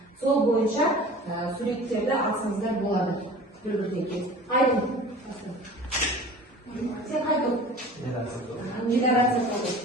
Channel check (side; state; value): both; normal; correlation 0.41